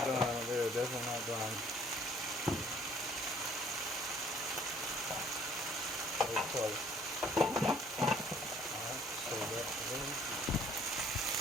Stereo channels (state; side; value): normal; both; correlation 0.59